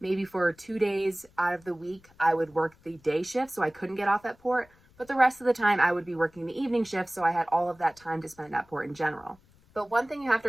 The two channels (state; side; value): noise; left; rumble, 29 dB below the sound